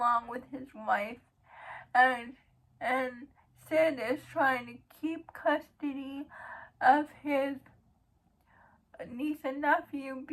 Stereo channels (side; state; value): both; identical; correlation 1.00